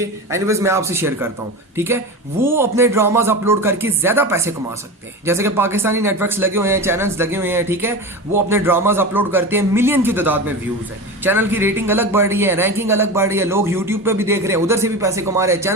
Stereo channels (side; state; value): both; normal; correlation 0.26